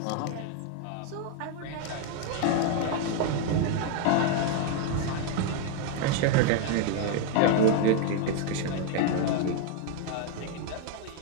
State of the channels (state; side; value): different; both; correlation 0.01